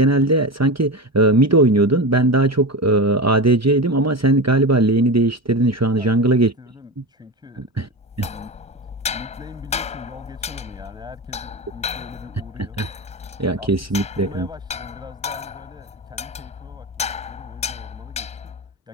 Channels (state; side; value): normal; both; correlation 0.23